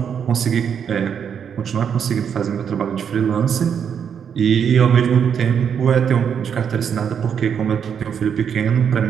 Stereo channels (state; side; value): quieter; left; 7.7 dB